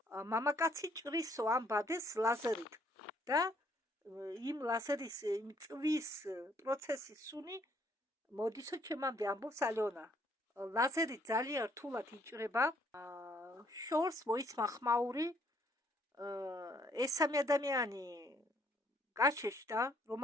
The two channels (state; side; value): normal; both; correlation 0.66